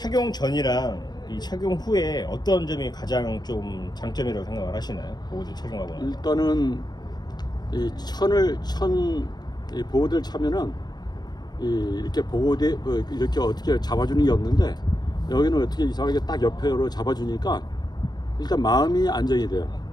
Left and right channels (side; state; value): right; late; 0.20 ms